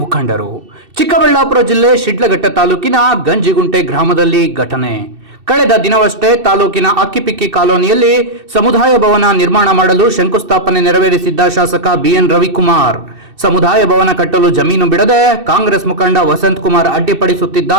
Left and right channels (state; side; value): late; left; 2.7 ms